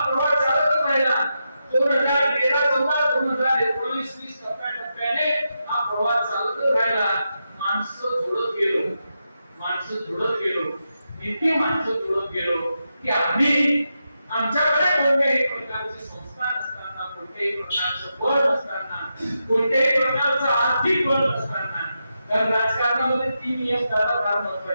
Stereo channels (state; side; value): inverted; both; correlation -0.87